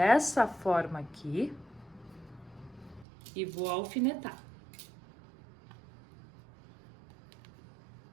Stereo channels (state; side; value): drops out; left; at 3.1 s